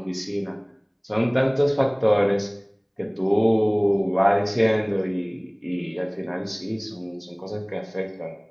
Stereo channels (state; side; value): identical; both; correlation 1.00